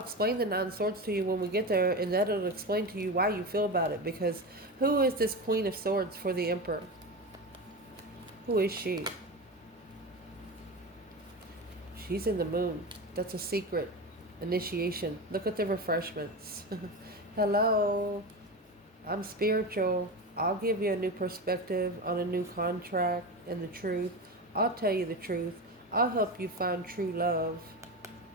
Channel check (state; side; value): normal; both; correlation 0.23